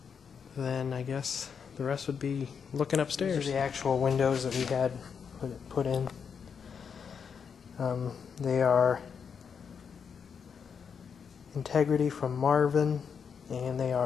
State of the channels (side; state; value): right; quieter; 6.6 dB